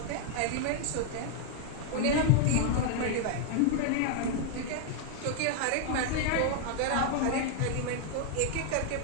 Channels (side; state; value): both; different; correlation 0.00